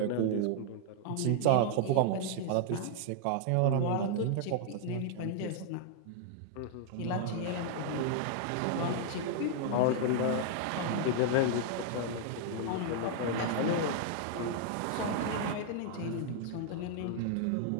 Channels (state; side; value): different; both; correlation 0.00